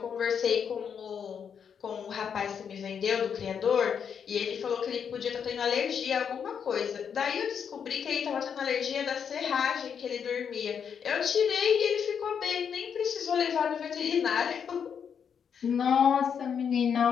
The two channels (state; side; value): quieter; right; 7.3 dB